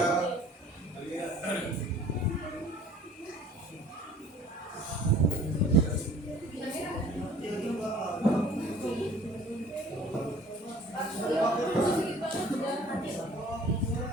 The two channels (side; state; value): both; normal; correlation 0.50